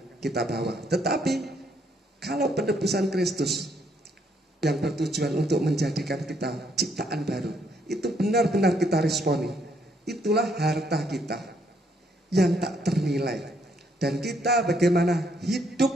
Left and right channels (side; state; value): both; normal; correlation 0.71